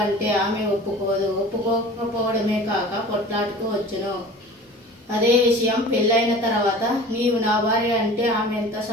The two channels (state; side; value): normal; both; correlation 0.41